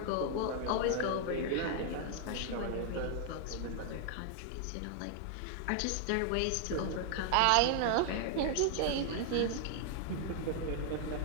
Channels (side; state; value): both; different; correlation 0.00